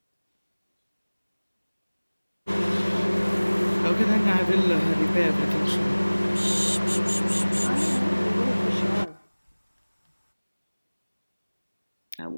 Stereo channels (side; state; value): both; inverted; correlation -1.00